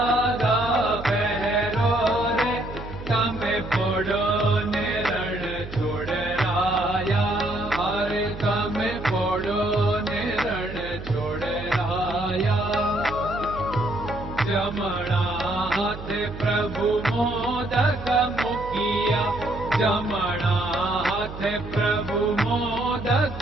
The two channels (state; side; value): noise; right; hum, 11 dB below the sound